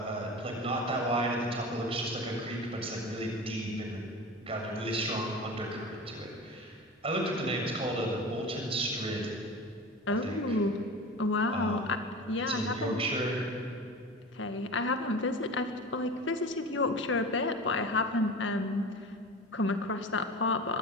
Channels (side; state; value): both; normal; correlation 0.32